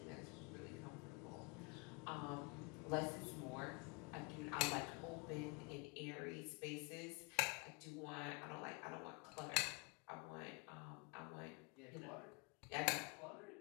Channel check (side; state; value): right; quieter; 31.0 dB